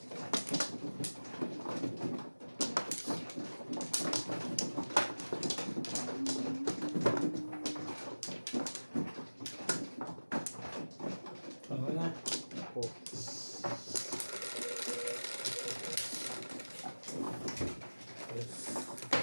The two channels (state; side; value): inverted; both; correlation -1.00